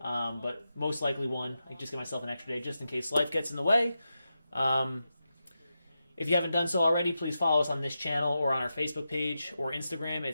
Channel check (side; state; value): both; inverted; correlation -0.89